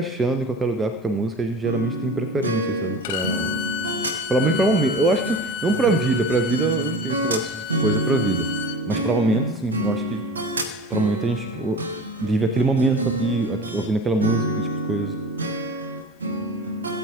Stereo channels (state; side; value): normal; both; correlation 0.35